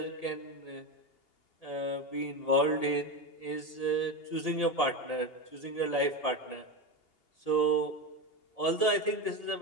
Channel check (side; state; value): right; late; 2.8 ms